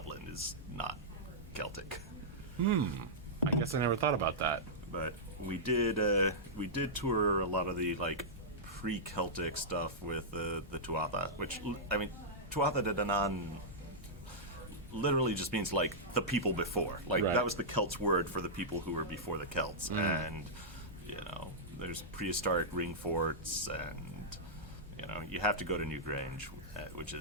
is not Celtic. I guess I never thought about that. But we did tour a lot of the like pre-Celtic stuff with the Tuatha, which, I mean, Tuatha De Danann literally just means like the people before. Like, that was the Celts word for the people who were before the Celts. And there's prehistoric ring forts, and you have to go to Newgrange, which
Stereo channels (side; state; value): both; normal; correlation -0.12